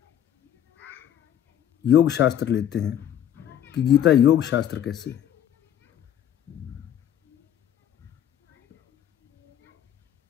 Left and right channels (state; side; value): quieter; right; 10.3 dB